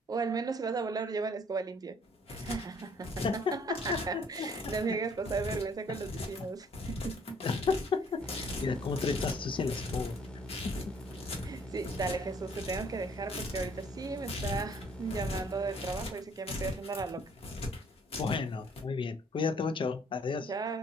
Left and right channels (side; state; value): both; normal; correlation 0.61